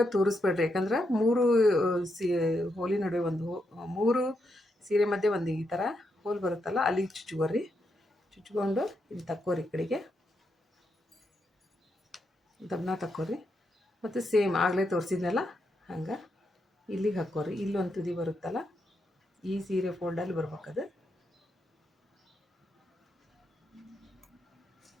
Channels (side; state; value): both; normal; correlation 0.82